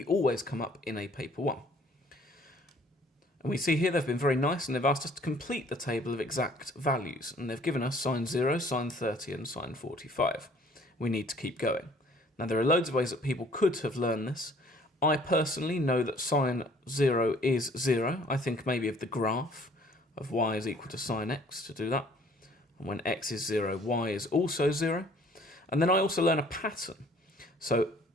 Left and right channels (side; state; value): both; normal; correlation 0.57